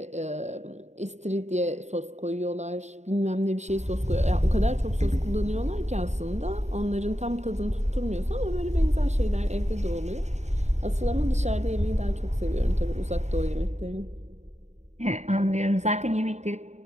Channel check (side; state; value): left; late; 0.33 ms